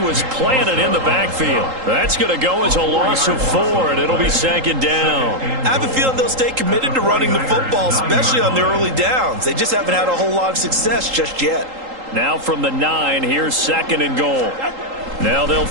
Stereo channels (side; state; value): left; late; 3.8 ms